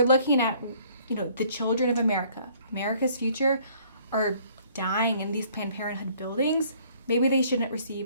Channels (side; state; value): both; inverted; correlation -0.60